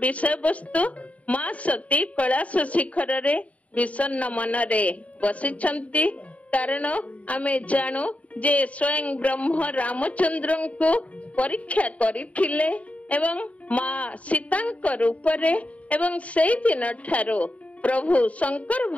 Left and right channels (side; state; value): right; late; 0.067 ms